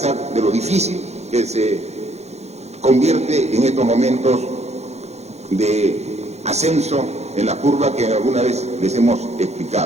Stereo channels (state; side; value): late; left; 0.32 ms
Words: de lo difícil que se convierte en estos momentos de ascenso en la curva que alguna vez les hemos